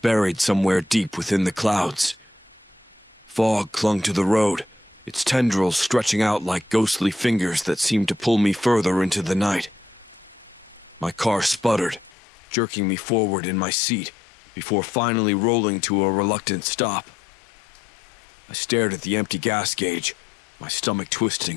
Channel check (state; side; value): drops out; right; at 12.1 s